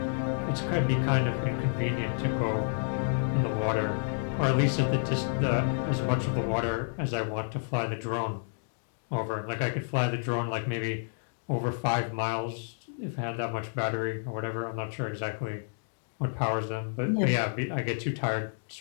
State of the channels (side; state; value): right; silent; digital silence